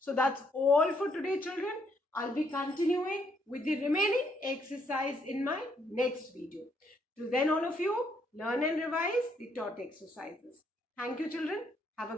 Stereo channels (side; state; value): both; normal; correlation 0.72